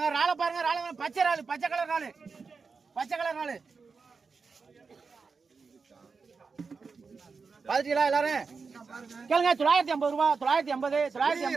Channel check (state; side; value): quieter; left; 4.9 dB